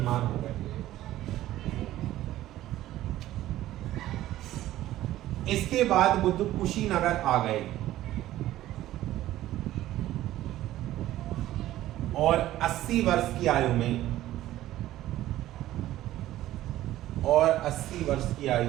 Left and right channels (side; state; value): left; quieter; 14.5 dB